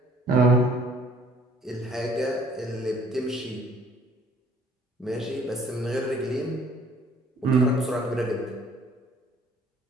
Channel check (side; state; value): both; normal; correlation 0.57